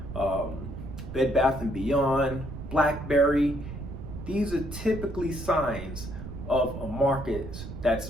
Bed Bath & Beyond, BlackBerry, these are typically signs of a market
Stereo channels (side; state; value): right; noise; rumble, 10 dB below the sound